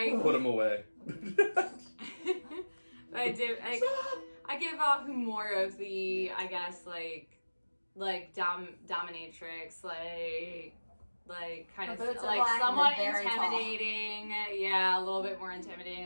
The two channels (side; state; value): both; inverted; correlation -1.00